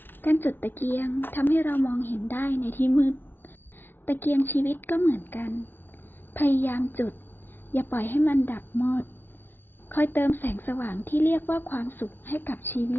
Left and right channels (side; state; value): right; late; 0.098 ms